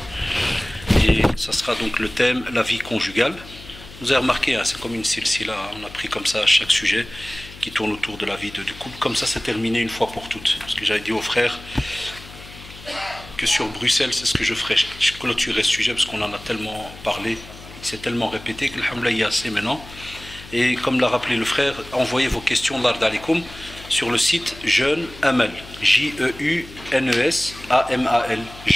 et ça sera donc le thème la vie conjugale. Vous avez remarqué, c'est comme une silsila, on a pris comme ça chaque sujet qui tourne autour de la vie du couple, comme ça c'est terminé une fois pour toutes. Parce que j'avais dit aux frères que sur Bruxelles, c'est ce que je ferai, je clôturerai ce sujet parce qu'on en a tellement parlé, il s'est tellement répété que alhamdoulilah il y a assez maintenant. Et comme l'a rappelé le frère, envoyez vos questions l'Ard Alikum sur le site Jeune Amal, J-E-U-N-E-S-A-M-A-L,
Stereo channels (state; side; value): noise; left; hum, 17 dB below the sound